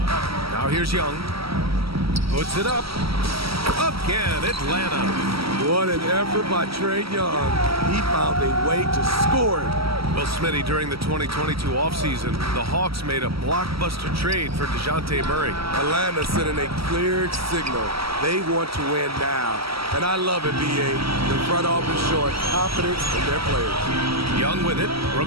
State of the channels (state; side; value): late; left; 0.75 ms